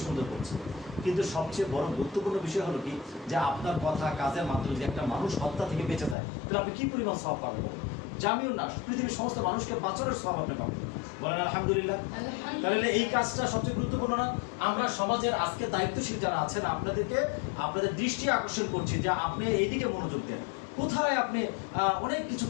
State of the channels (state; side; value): drops out; right; at 6.2 s